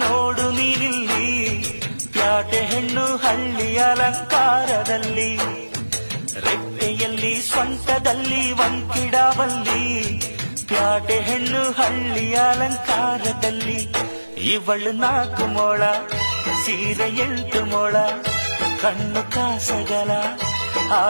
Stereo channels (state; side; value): inverted; both; correlation -1.00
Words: ನೋಡು ನೀನಿಲ್ಲಿ, ಪ್ಯಾಟೆ ಹೆಣ್ಣು ಹಳ್ಳಿ ಅಲಂಕಾರದಲ್ಲಿ, ರೆಟ್ಟೆಯಲ್ಲಿ ಸೊಂಟದಲ್ಲಿ ವಂಕಿಡಾವಲ್ಲಿ, ಪ್ಯಾಟೆ ಹೆಣ್ಣು ಹಳ್ಳಿ ಅಲಂಕಾರದಲ್ಲಿ. ಇವಳು 4 ಮೊಳ, ಸೀರೆ 8 ಮೊಳ, ಕಣ್ಣು ಕಾಸಗಲ,